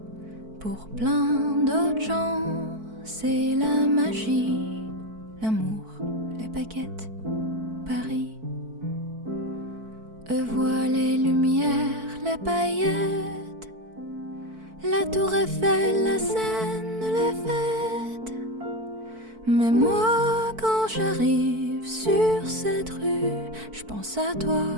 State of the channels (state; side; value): late; left; 4.5 ms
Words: Pour plein d'autres gens, c'est la magie, l'amour, les baguettes, Paris. Je vois les lumières, les paillettes, la tour Eiffel, la Seine, les fêtes. Mais moi, quand j'arrive sur cette rue, je pense à toi